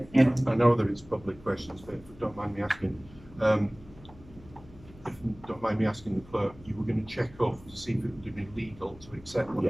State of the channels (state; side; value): noise; left; hum, 22 dB below the sound